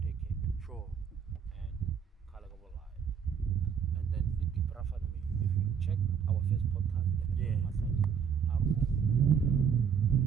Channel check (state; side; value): quieter; left; 7.2 dB